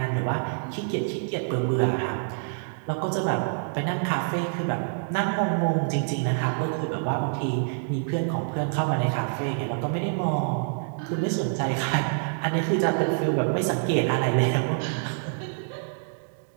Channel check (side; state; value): left; silent; digital silence